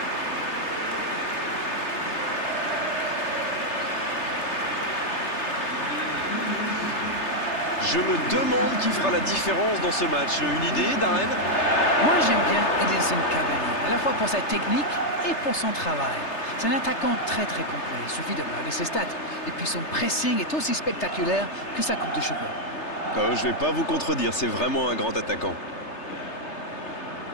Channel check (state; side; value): late; right; 3.3 ms